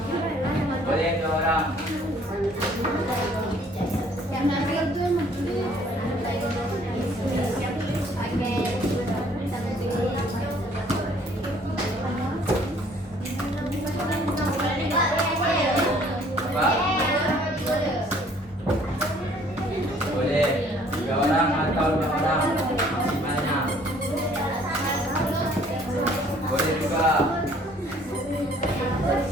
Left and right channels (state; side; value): normal; both; correlation 0.59